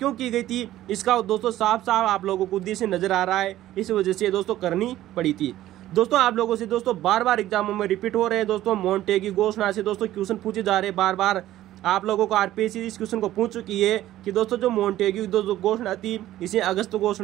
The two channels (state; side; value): quieter; left; 14.1 dB